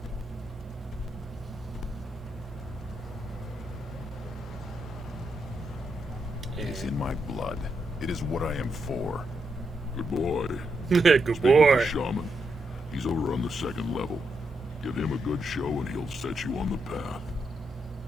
It is in my blood. It is what I am for. Good boy. Good Speak with boy. the shaman. He's over on the second level. Give him a good show and he'll set you on the path.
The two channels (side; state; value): both; normal; correlation 0.82